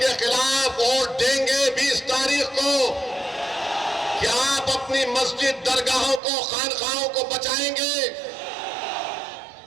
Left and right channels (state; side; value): drops out; left; at 6.2 s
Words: खिलाफ वोट देंगे 20 तारीख को? क्या आप अपनी मस्जिद, दरगाहों को, खानखाहों को बचाएंगे?